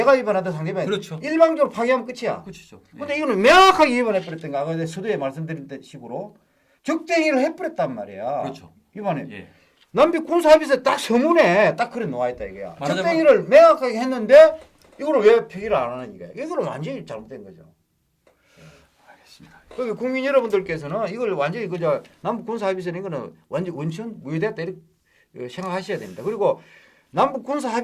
위반하든 상대방이 그렇죠. 일방적으로 파기하면 끝이야. 끝이죠. 예. 근데 이거는 명확하게 위반해 버렸던 거. 아까 서두에 말씀드린 식으로 적대행위를 해버렸단 말이야. 그렇죠. 위반해. 예. 남북 군사 합의서 딱 서문에 딱 그래 놓아 있다 이거야. 말하자면- 적대행위를 명확하게 했는데 이거를 왜 폐기를 안 하는 거야? 이거는 완전히 잘못된 거죠. 알겠습니다. 그러니까 국민 여러분들께서는 이걸 완전히 그저 남북 군사 합의서는 이거는 완전 원천 무효됐다 이렇게 생각하셔야 됩니다. 그리고 남북 군사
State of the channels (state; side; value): identical; both; correlation 1.00